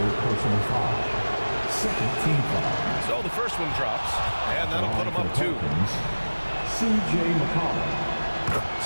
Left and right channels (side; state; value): both; inverted; correlation -1.00